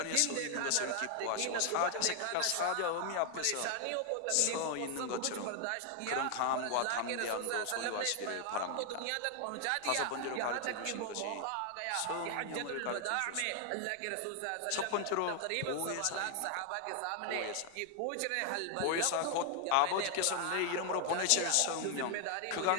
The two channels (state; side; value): different; both; correlation 0.00